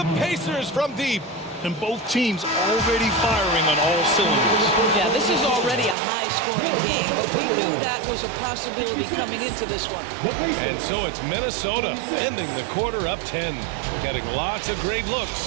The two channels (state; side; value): drops out; left; at 6.0 s